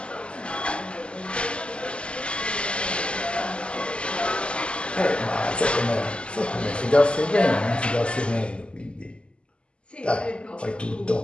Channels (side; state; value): right; late; 0.053 ms